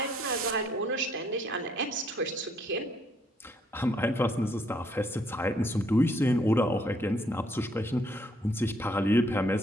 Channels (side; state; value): both; normal; correlation 0.68